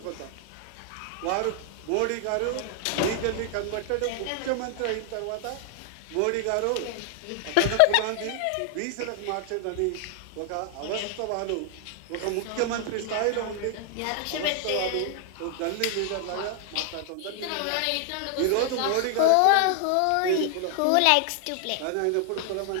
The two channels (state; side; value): different; both; correlation 0.00